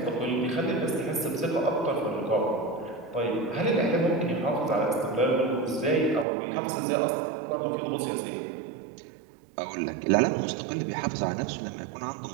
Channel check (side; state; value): left; drops out; at 6.2 s